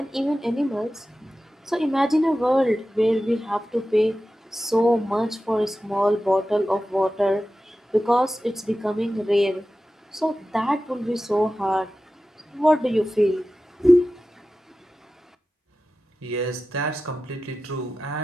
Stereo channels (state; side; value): normal; both; correlation 0.94